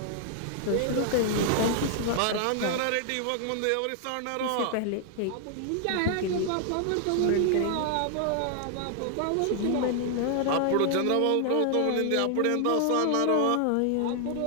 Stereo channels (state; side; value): different; both; correlation 0.00